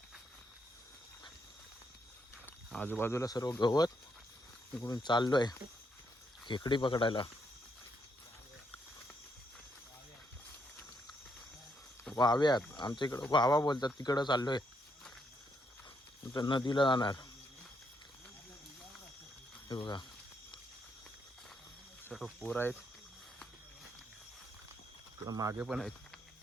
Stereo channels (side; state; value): both; normal; correlation 0.76